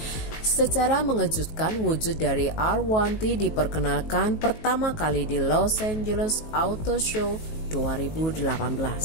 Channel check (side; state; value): right; late; 19 ms